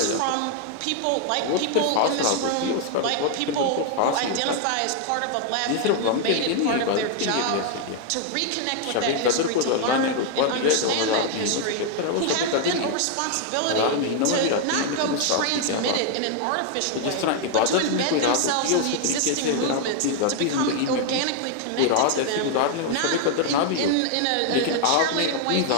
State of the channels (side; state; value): both; different; correlation 0.00